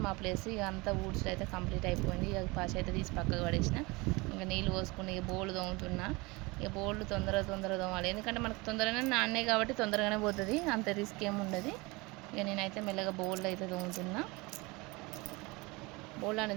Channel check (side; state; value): left; quieter; 24.7 dB